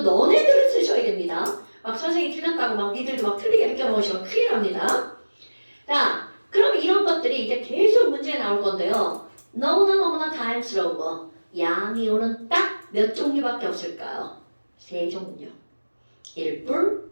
너네들은 쓰셔야 됩니다. 막 선생님이 틀렸다고 막 니들도 막 틀리게 느껴놓으시면 큰일 납니다. 자, 그럼 이런 것들이 이제 계속 문제에 나올 건데요. 너무나 다양스러운 거. 양이온은 딱 몇 종류밖에 없을까요? 3종류. 1뿔,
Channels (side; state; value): both; inverted; correlation -1.00